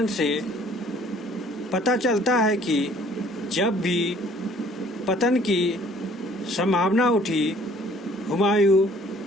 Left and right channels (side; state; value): both; normal; correlation 0.57